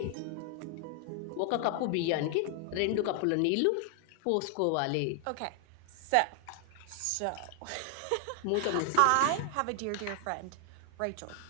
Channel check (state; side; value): different; both; correlation 0.00